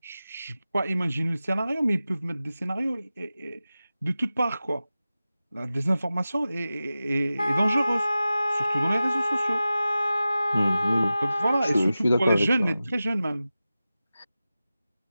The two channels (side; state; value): both; inverted; correlation -0.95